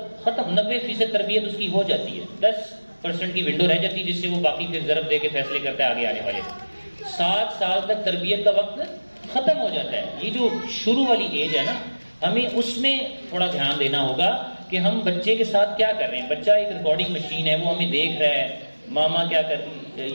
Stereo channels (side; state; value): both; inverted; correlation -1.00